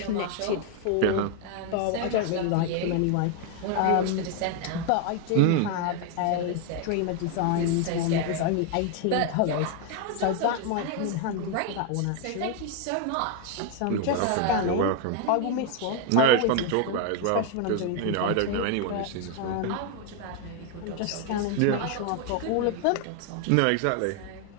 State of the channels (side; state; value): both; different; correlation 0.01